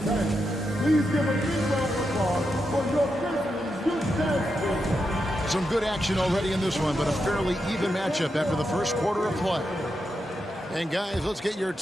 Please give a big round of applause for your Grizzlies youth dance team. Some good action already in this one, but a fairly even matchup after the first quarter of play. And guys, let's get your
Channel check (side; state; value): both; normal; correlation 0.86